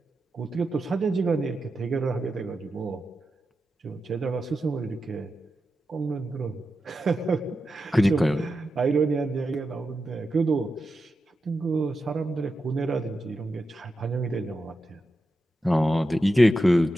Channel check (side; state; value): both; normal; correlation 0.89